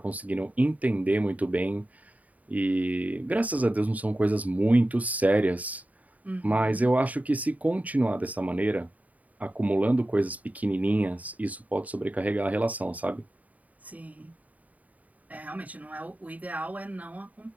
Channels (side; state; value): left; late; 0.073 ms